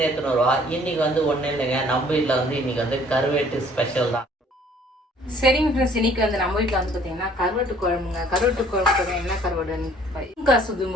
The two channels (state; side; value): normal; both; correlation 0.57